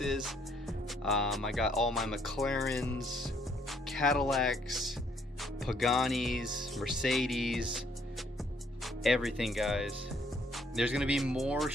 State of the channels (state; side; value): normal; both; correlation 0.67